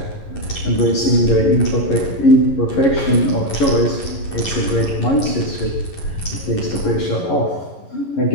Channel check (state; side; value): late; right; 11 ms